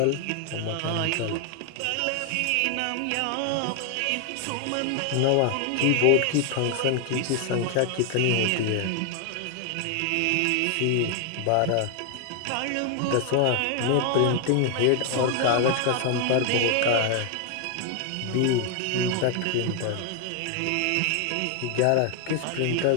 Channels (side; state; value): both; different; correlation 0.00